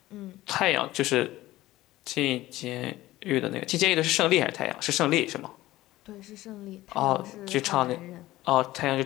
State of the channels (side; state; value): right; quieter; 16.7 dB